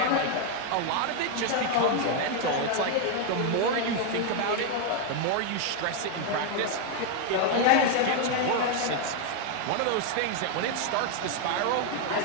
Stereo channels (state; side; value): different; both; correlation 0.00